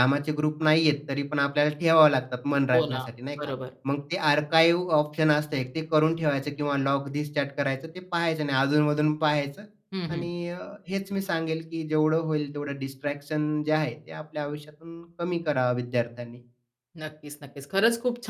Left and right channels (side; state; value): both; identical; correlation 1.00